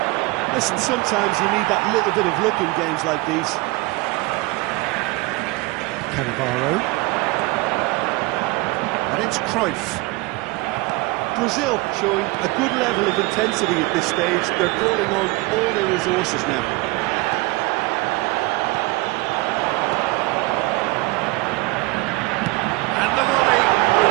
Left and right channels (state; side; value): quieter; left; 22.7 dB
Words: Listen, sometimes you need that little bit of luck in games like these. Cannavaro. And it's Cruyff. Brazil showing a good level of intensity at this stage. They're calling on all their resources now. And the volley.